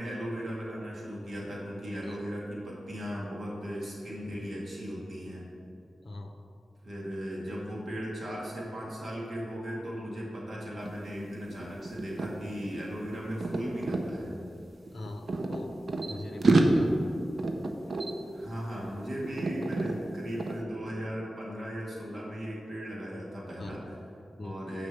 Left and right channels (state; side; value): normal; both; correlation 0.93